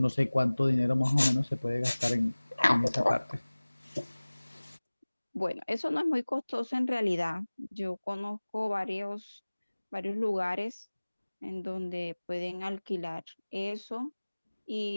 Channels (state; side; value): inverted; both; correlation -1.00